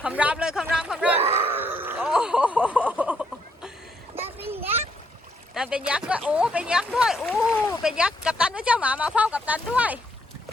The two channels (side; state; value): both; normal; correlation 0.73